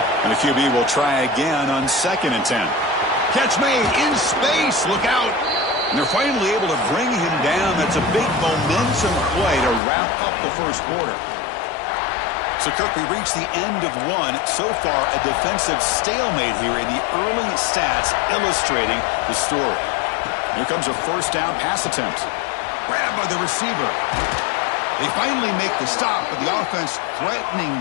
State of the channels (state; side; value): drops out; right; at 9.8 s